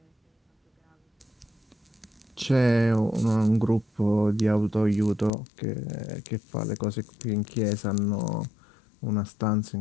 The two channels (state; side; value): drops out; right; at 5.3 s